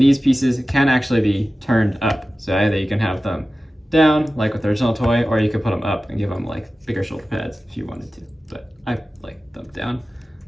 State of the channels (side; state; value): both; normal; correlation 0.95